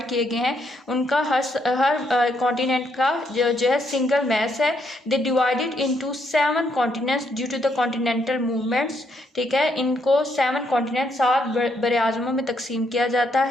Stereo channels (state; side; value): normal; both; correlation 0.75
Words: किए गए हैं, उनका हर कॉन्टिनेंट का जो है सिंगल मैस है। They divided into 7 continents due to the continental movements. ठीक है, इनको 7 कॉन्टिनेंट 7 बड़े आज़मों में तकसीम किया जाता